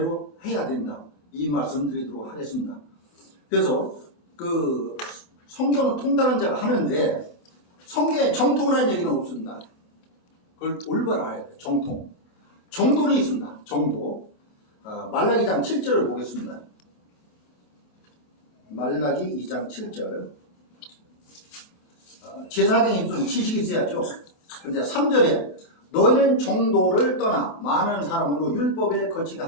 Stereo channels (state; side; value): late; right; 24 ms